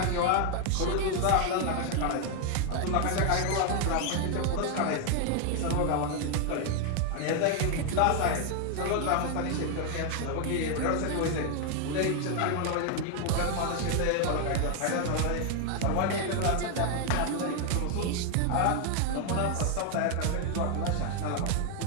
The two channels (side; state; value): both; different; correlation 0.01